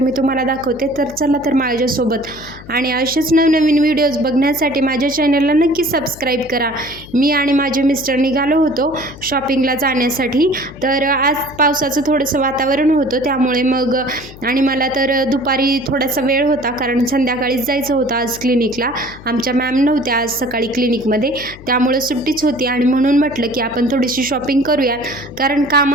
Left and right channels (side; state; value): left; noise; hum, 18 dB below the sound